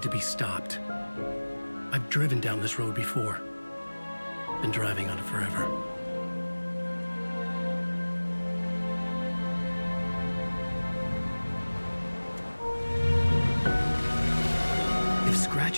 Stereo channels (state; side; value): inverted; both; correlation -1.00